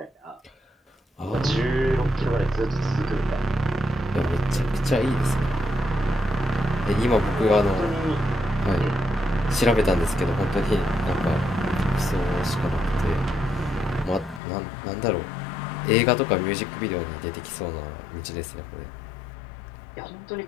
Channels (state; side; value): drops out; right; at 14.4 s